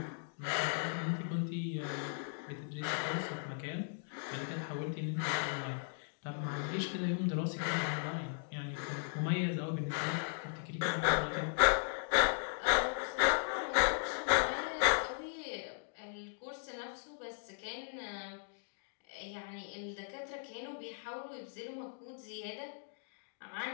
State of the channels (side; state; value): right; silent; digital silence